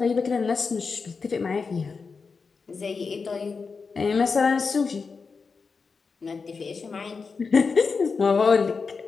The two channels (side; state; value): right; quieter; 4.9 dB